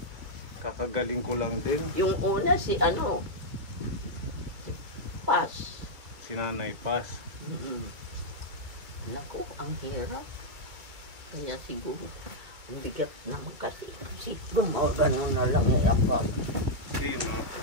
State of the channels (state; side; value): late; left; 2.3 ms